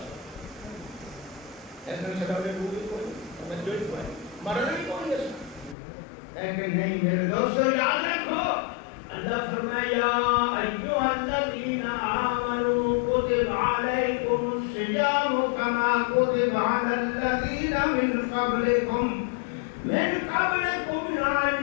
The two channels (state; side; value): drops out; right; at 5.8 s